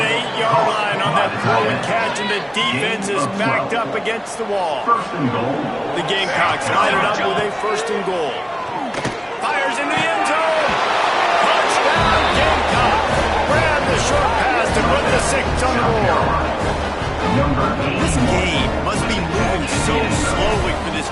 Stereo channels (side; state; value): both; identical; correlation 1.00